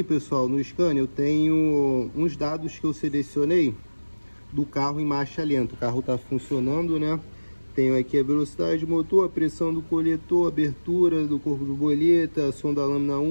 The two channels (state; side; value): inverted; both; correlation -1.00